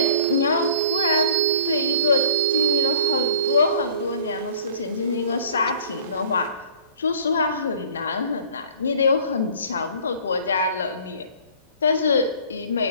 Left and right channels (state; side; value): inverted; both; correlation -0.47